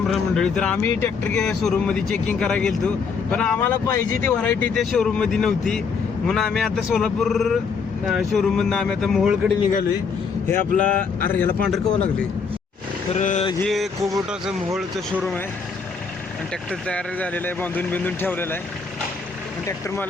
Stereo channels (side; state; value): right; quieter; 5.4 dB